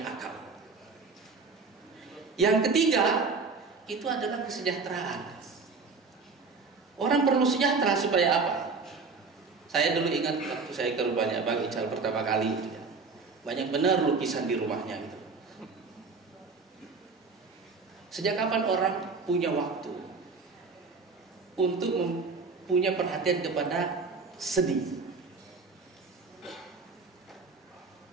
akal. Yang ketiga itu adalah kesejahteraan. Orang perlu sejahtera supaya apa? Saya dulu ingat waktu saya ke rumahnya Bang Ical pertama kali, banyak benar lukisan di rumahnya gitu. Sejak kapan orang punya waktu untuk punya perhatian kepada seni?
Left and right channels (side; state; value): left; quieter; 4.4 dB